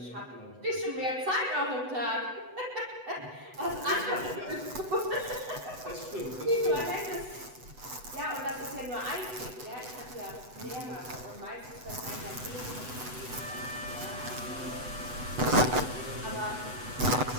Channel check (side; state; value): left; late; 8.0 ms